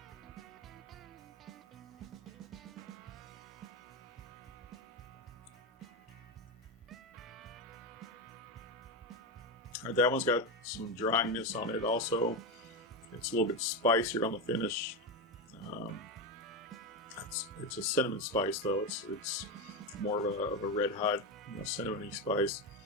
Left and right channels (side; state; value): both; normal; correlation 0.14